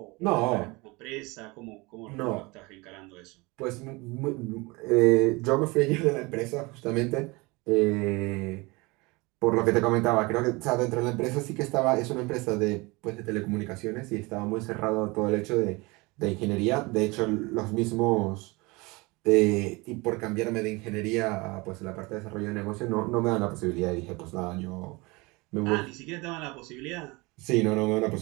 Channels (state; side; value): quieter; left; 24.9 dB